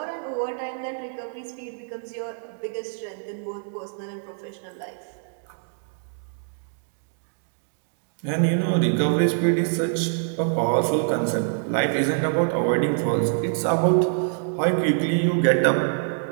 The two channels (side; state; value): left; silent; digital silence